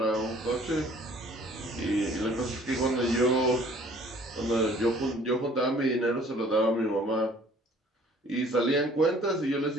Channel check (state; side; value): normal; both; correlation 0.54